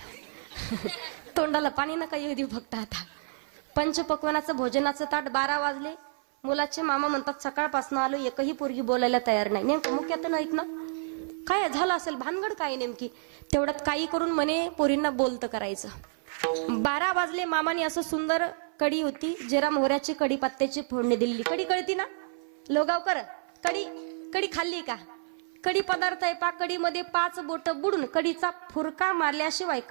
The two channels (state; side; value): silent; left; 57 dB below the other